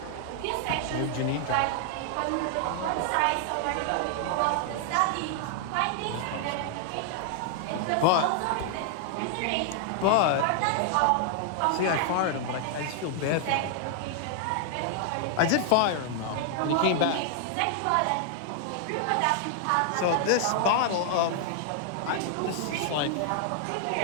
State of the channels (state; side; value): different; both; correlation 0.00